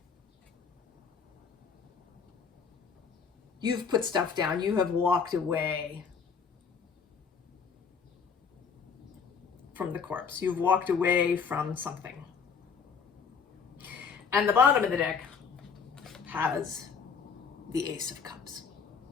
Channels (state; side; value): quieter; right; 6.0 dB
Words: put stuff down. You have walked away from the corpse. You've walked away from something. And the bottom of the deck has the Ace of Cups,